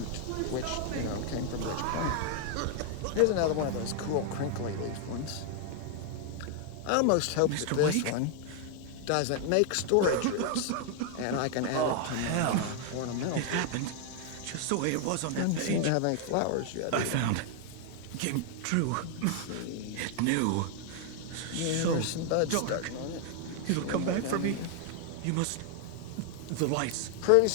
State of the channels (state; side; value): different; both; correlation 0.00